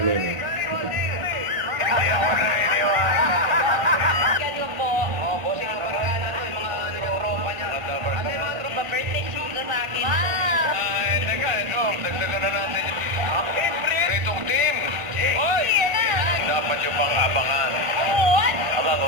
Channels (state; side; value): late; left; 1.5 ms